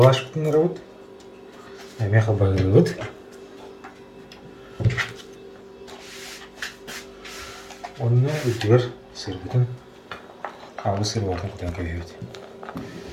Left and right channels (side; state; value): both; identical; correlation 1.00